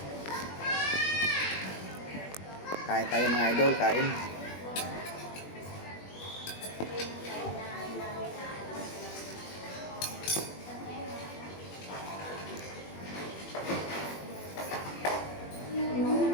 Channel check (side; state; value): right; late; 21 ms